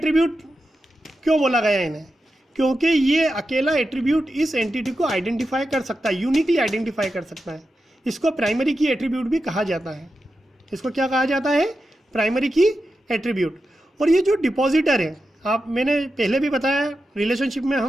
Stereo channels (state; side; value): normal; both; correlation 0.90